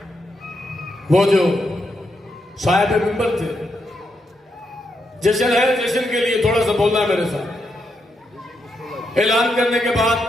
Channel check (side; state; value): both; normal; correlation 0.81